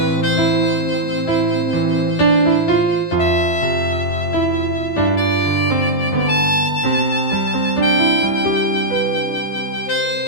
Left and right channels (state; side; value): late; right; 11 ms